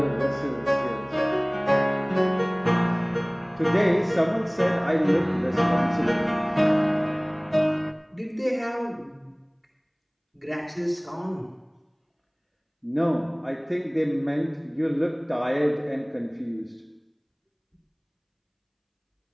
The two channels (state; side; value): identical; both; correlation 1.00